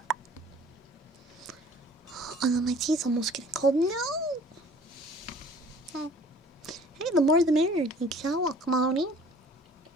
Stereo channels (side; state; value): both; normal; correlation 0.51